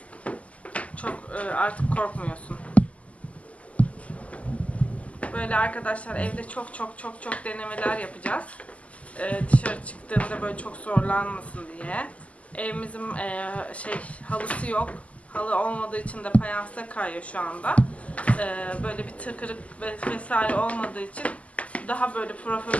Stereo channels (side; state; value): right; late; 0.068 ms